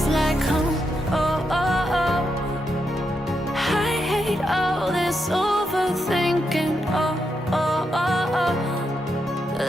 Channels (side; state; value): both; normal; correlation 0.83